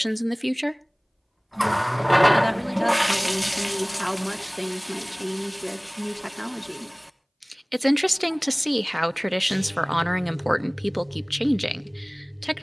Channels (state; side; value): identical; both; correlation 1.00